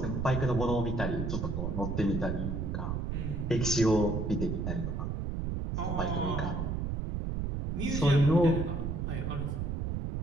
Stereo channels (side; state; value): right; noise; rumble, 2 dB below the sound